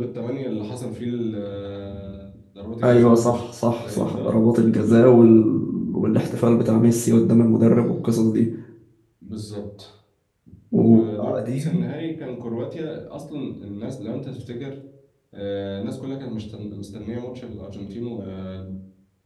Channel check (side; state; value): both; identical; correlation 1.00